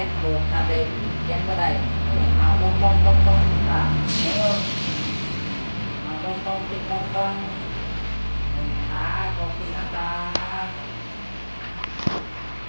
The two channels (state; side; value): inverted; both; correlation -1.00